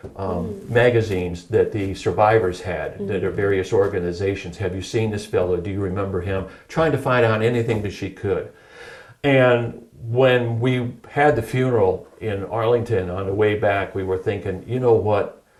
magazines that the survivors had, that are various organizations. Have you seen this fellow? Do you remember him? Trying to find out anything that she could. And when we had the funeral in Arlington on the way back, we were thinking, you know what,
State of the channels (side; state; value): both; identical; correlation 1.00